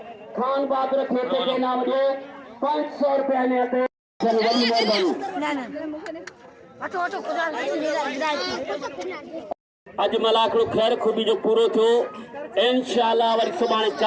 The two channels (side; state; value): both; identical; correlation 1.00